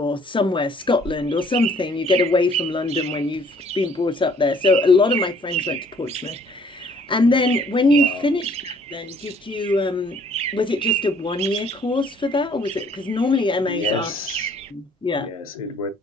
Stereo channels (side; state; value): both; normal; correlation 0.60